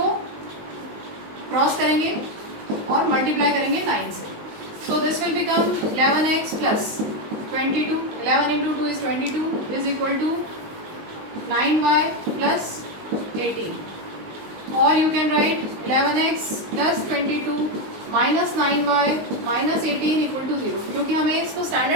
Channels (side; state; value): left; late; 19 ms